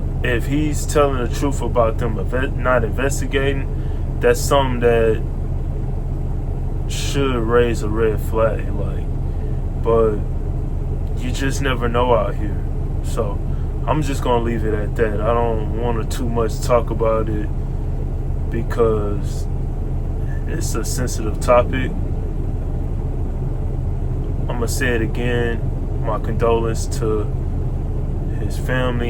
if he's telling the truth about them not investigating, that's something that should raise a red flag. But you just never know out here. So I'm just gonna leave it at that. I don't want to too much talk about it because it's a sensitive topic. I'm gonna say it again. My condolence to his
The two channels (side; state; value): both; identical; correlation 1.00